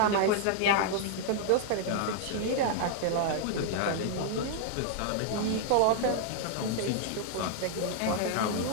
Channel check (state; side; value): different; both; correlation -0.01